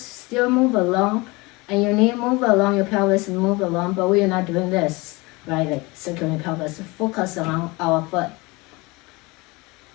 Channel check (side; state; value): right; quieter; 24.5 dB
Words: move along and your knee move along, your pelvis move along, but we are not doing this, right? Like circling pelvis, focus on our foot.